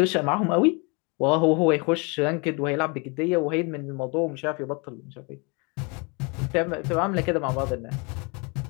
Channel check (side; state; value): right; quieter; 31.4 dB